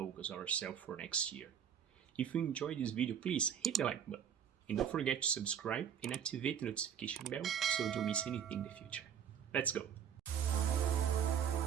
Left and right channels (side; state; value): left; quieter; 8.5 dB